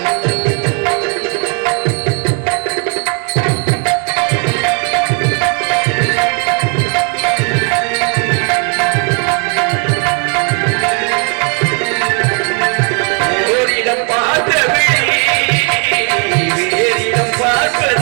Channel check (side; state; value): left; quieter; 38.7 dB